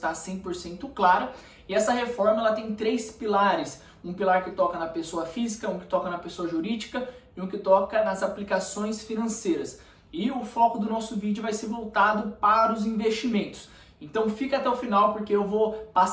100% clara. E essa reforma ela tem três pilares, um pilar que toca na pessoa física, um que toca na pessoa jurídica e um que toca nas aplicações financeiras. E o foco do nosso vídeo vai ser voltado para os investimentos. Então fica até o final porque eu vou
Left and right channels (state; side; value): identical; both; correlation 1.00